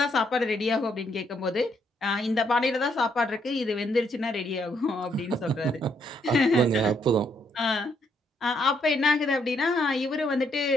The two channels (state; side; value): normal; both; correlation 0.73